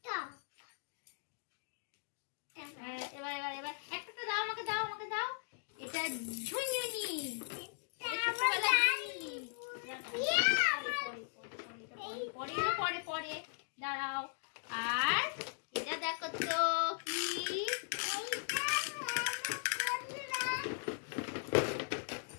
টপ। এবার এবার এবার একটা দাও, আমাকে দাও, আমাকে দাও। এটা ঝুনঝুনি, পরে পরে দাঁড়াও। আর এটা দেখো তো কি,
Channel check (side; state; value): right; silent; digital silence